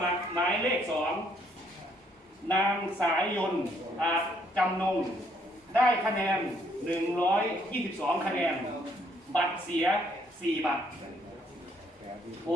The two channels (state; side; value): normal; both; correlation 0.69